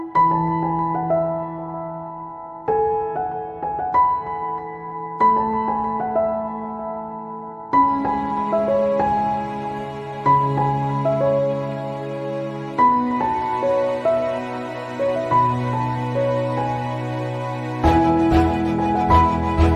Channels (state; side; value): identical; both; correlation 1.00